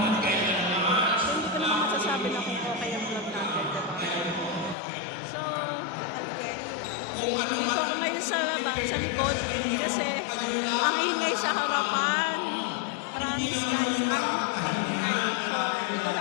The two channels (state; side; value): drops out; right; at 4.8 s